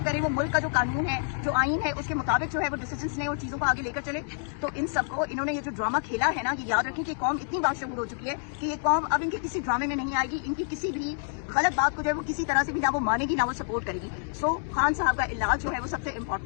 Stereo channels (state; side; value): silent; right; digital silence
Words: वो मुल्क का जो कानून है, जो आइन है, उसके मुताबिक जो है वो डिसीजंस लें और चीजों को आगे लेकर चले। तो इन सबको इन्होंने ये जो ड्रामा खेला है ना, ये याद रखें कि कौम इतनी बादशाह हो चुकी है कि ये कौम अब इनके किसी ड्रामे में नहीं आएगी, इनकी किसी भी गलत बात को जो है वो किसी तरह से भी ना वो मानेगी ना वो सपोर्ट करेगी। सो खान साहब का इलाज जो है वो सबसे